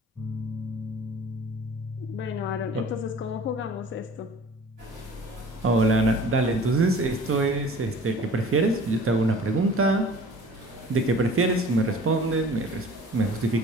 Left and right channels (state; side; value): normal; both; correlation 0.46